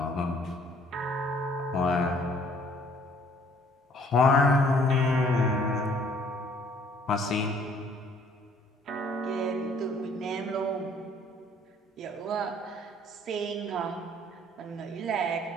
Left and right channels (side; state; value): both; normal; correlation 0.60